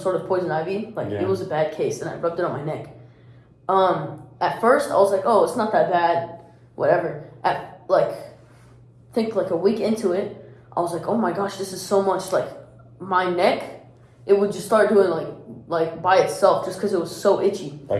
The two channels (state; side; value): identical; both; correlation 1.00